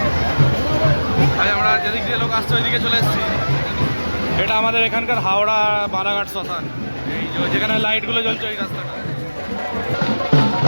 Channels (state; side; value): inverted; both; correlation -1.00